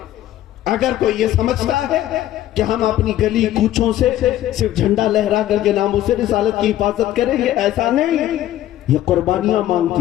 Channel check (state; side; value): quieter; right; 13.1 dB